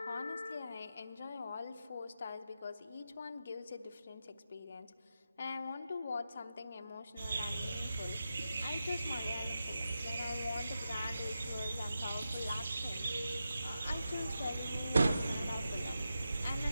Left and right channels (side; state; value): both; inverted; correlation -0.89